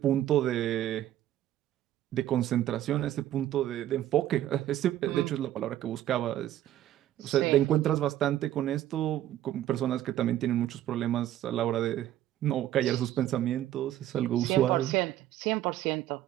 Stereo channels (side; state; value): left; quieter; 12.7 dB